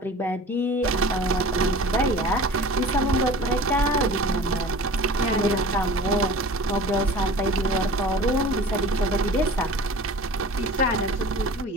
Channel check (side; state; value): both; normal; correlation 0.41